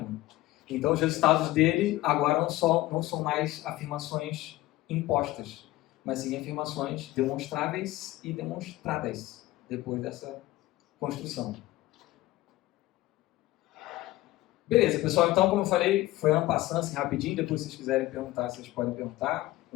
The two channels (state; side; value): quieter; right; 17.1 dB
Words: Então, os resultados dele agora não são mais afirmações impostas, mas sim afirmações demonstráveis e demonstradas depois dessa construção. Beleza, pessoal. Então, como eu falei, foi en passant, assim, rapidinho. Depois, se vocês quiserem perguntar, vocês podem perguntar com